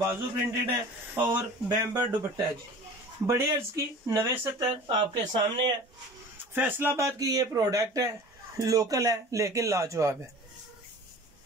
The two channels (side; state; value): both; normal; correlation 0.41